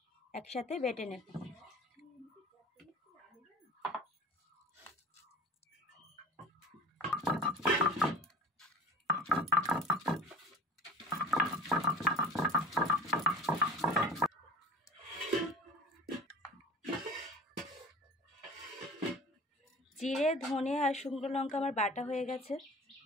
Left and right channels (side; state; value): both; normal; correlation 0.39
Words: একসাথে বেটে নেব। জিরে, ধনে আর শুকনো লঙ্কা আমার বাটা হয়ে গেছে।